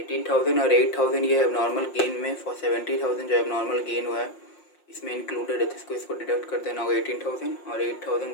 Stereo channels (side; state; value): right; late; 5.6 ms